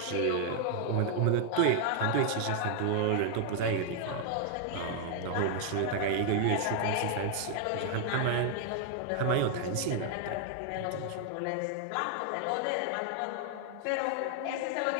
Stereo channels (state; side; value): different; both; correlation 0.00